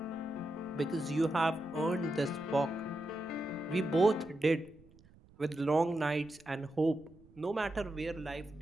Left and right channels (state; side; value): noise; right; rumble, 25 dB below the sound